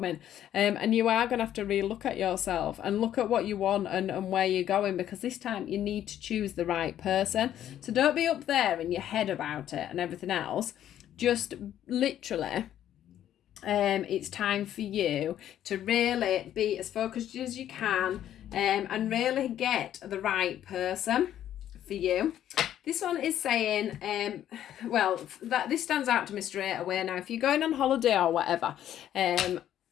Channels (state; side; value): quieter; right; 11.2 dB